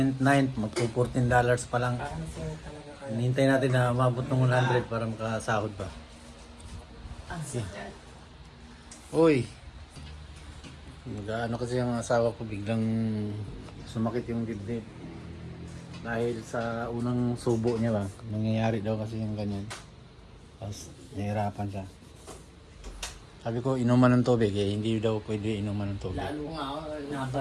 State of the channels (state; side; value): identical; both; correlation 1.00